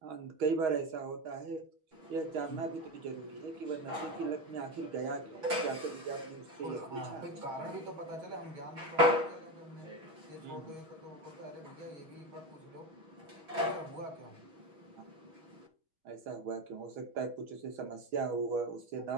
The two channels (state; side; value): late; left; 5.9 ms